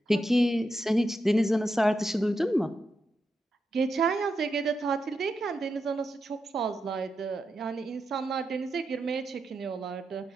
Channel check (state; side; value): normal; both; correlation 0.86